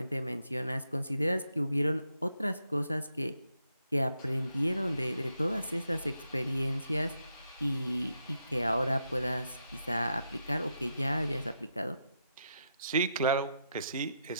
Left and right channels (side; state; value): both; inverted; correlation -0.82